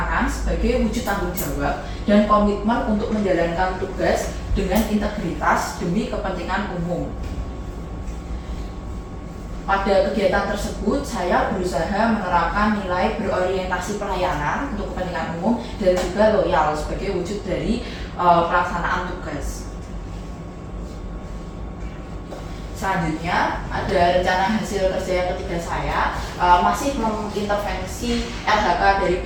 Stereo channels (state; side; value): identical; both; correlation 1.00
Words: sebagai wujud tanggung jawab dan komitmen untuk menjalankan tugas dengan integritas demi kepentingan umum. Pada kegiatan tersebut, saya berusaha menerapkan nilai berorientasi pelayanan untuk kepentingan umum dan juga loyal sebagai wujud dari pelaksanaan tugas. Selanjutnya, ada rencana hasil kerja yang ketiga saya, masih mengintervensi RHK dari